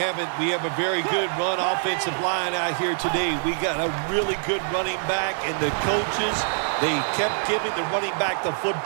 We have a very good run offensive line out here today. We got a really good running back, and the coaches, they kept giving the running back the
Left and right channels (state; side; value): silent; left; digital silence